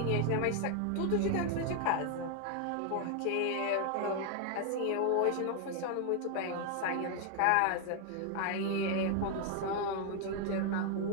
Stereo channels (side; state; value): both; different; correlation 0.00